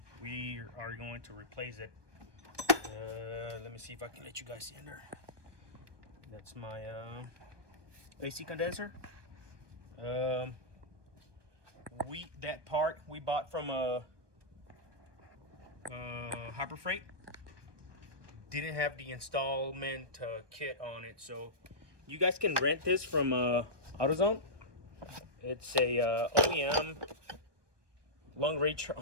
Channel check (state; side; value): late; left; 1.2 ms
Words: we are going to replace it. Let me see if I can let you guys see in there. That's my AC condenser. That part we bought from Harbor Freight. Didn't have the installment kit on it, so you guys can rent this from AutoZone. It's a OEM long range